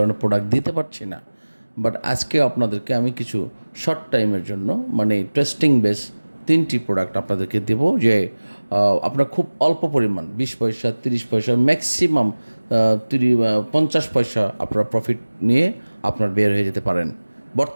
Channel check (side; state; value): both; inverted; correlation -1.00